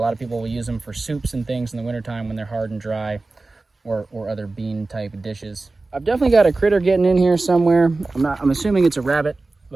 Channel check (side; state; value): left; quieter; 3.4 dB